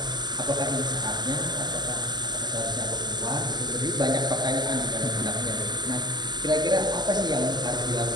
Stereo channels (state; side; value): late; left; 0.21 ms